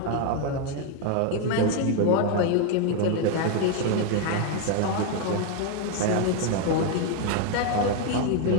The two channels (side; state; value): both; different; correlation 0.01